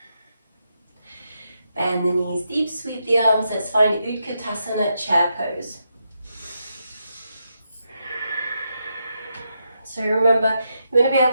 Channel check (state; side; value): inverted; both; correlation -0.83